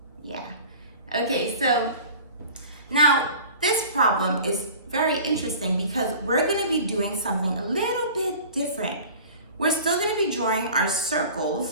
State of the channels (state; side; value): inverted; both; correlation -0.42